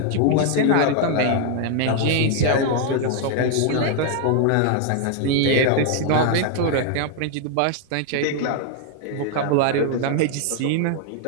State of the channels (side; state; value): both; different; correlation 0.00